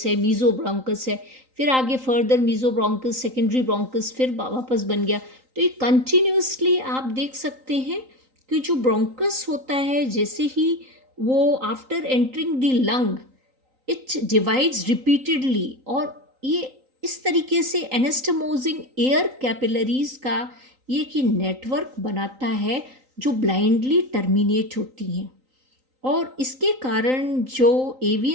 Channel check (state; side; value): late; left; 3.9 ms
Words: है, मीजो ब्रोंकस है, फिर आगे further mesobronchus, secondary bronchus, फिर वापस बन गया। तो ये कंटिन्यूसली आप देख सकते हैं कि जो ब्रोंकस होता है जैसे ही वो after entering the lung it divides repeatedly, और ये इस तरीके से एनास्टमोजिंग एयर कैपिलरीज का ये कि नेटवर्क बनाता है जो ब्लाइंडली टर्मिनेट होती हैं, और इसके कारण जो